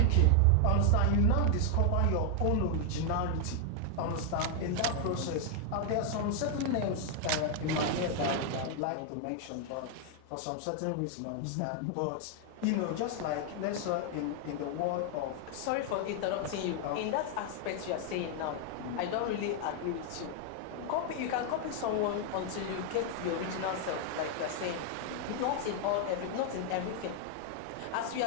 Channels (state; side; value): different; both; correlation 0.00